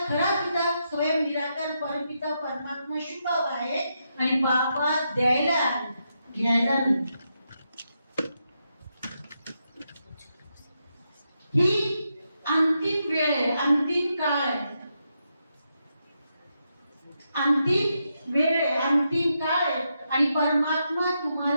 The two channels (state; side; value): inverted; both; correlation -0.83